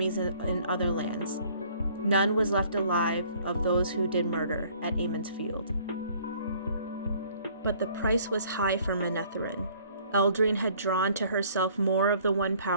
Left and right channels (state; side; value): inverted; both; correlation -0.58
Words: in other lands. None was left alive of those who did murder at Ammon's Field. But the price was high for Manetheren. Eldrine had drawn to herself more of the one